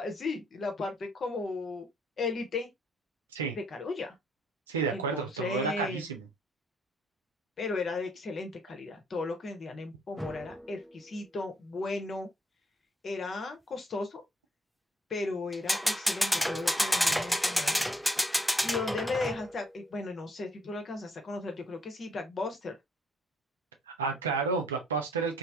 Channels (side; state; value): both; normal; correlation 0.68